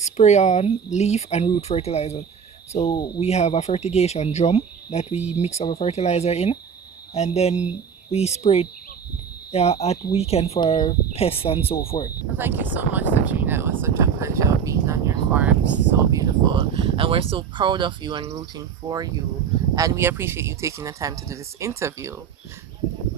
on, leaf, and root fertilizer. So we have a fertigation drum that we mix our fertilizer in, and then we spray it at weekend for pests and so forth. Well, thank you so much, Satrina. It was such a pleasure being on your farm. It's so beautiful. And we're so proud of you and rooting for you. And we appreciate you taking the time to do this interview.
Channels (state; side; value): quieter; left; 7.0 dB